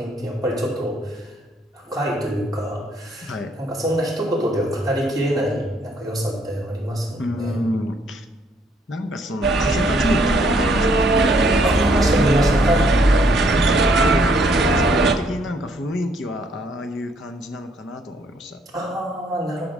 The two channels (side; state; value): both; normal; correlation 0.67